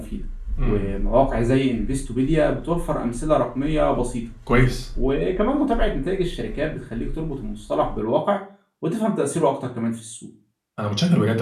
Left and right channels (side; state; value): both; identical; correlation 1.00